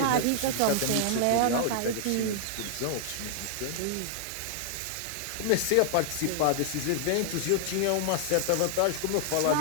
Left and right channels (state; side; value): different; both; correlation -0.01